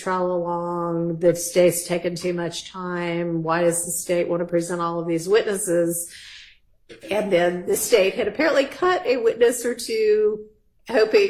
along? The state's taken too much time. Why does the state want to present all of these witnesses? And then the state had apparently cut a witness or two,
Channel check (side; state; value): both; identical; correlation 1.00